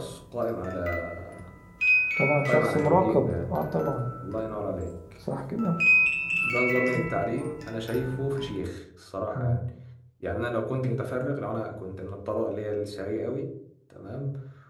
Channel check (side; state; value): both; identical; correlation 1.00